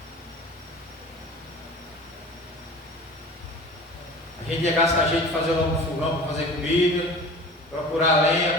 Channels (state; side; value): normal; both; correlation 0.39